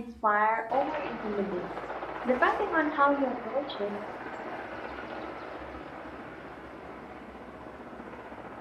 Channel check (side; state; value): both; identical; correlation 1.00